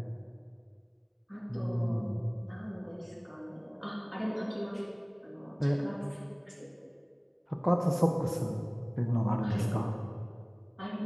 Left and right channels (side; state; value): both; identical; correlation 1.00